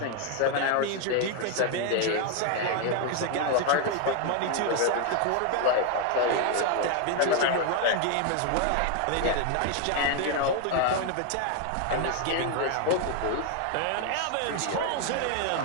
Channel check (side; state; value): both; different; correlation 0.01